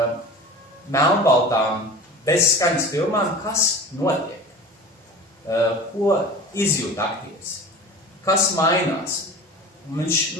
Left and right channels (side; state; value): both; normal; correlation 0.37